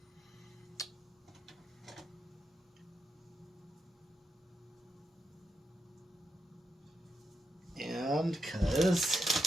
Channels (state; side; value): normal; both; correlation 0.84